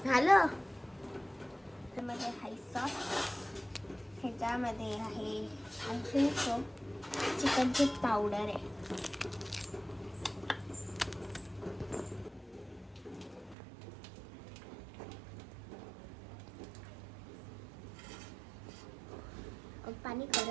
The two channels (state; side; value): drops out; left; at 13.6 s